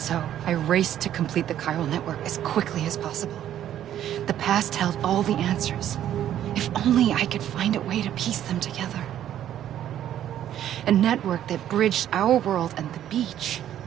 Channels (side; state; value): left; quieter; 11.2 dB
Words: I raced to complete the chiral network as quickly as possible. The past held all the answers. If only I could find a way to piece them together. A network that bridged our world and the beach.